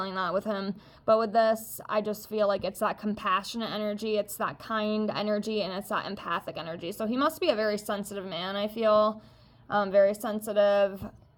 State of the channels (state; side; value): identical; both; correlation 1.00